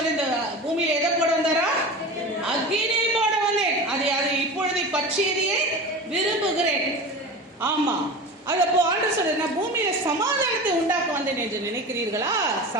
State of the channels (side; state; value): both; normal; correlation 0.31